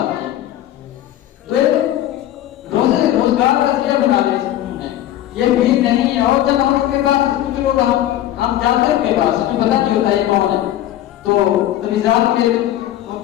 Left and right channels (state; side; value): quieter; right; 12.9 dB